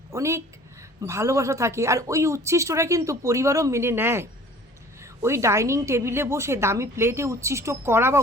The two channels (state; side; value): normal; both; correlation 0.49